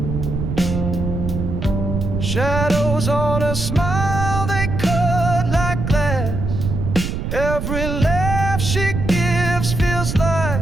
Shadows on a smile, they cut like glass. Every laugh she gives feels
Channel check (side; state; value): right; noise; rumble, 3 dB below the sound